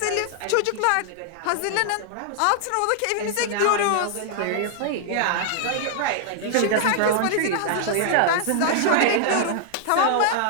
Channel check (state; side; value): different; both; correlation -0.01